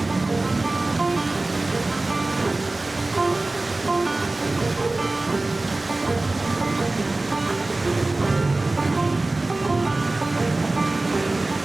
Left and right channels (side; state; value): left; quieter; 3.0 dB